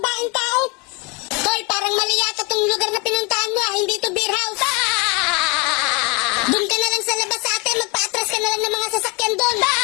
tao. Hoy, parang mali yata tong lugar na pinuntahan mo, hindi to beer house. Doon ka na lang sa labas sa atin, magpa-atras ka na lang ng mga sasakyan doon.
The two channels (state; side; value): quieter; right; 29.1 dB